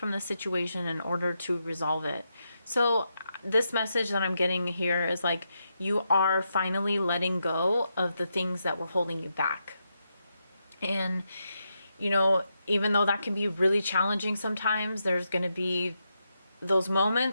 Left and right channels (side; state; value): both; inverted; correlation -0.84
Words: the situation in order to resolve it. So this message that I'm getting here is like, you are finally letting go of the things that were holding you back. And, even though that can be really challenging sometimes, there's going to be those